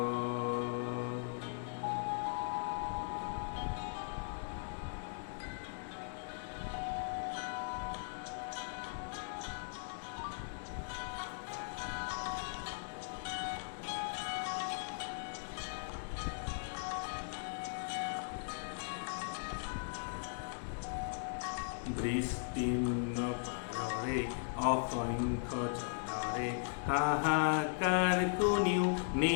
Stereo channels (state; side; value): silent; right; digital silence